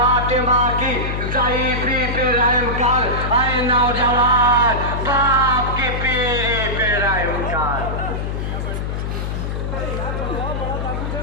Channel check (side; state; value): left; noise; hum, 3 dB below the sound